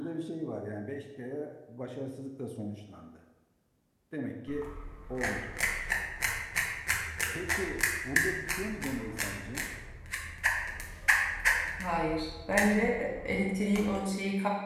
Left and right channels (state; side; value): identical; both; correlation 1.00